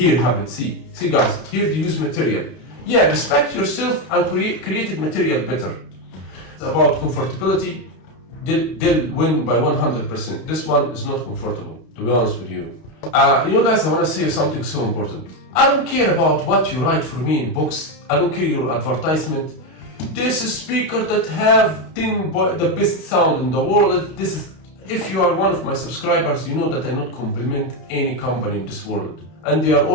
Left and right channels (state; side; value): late; right; 32 ms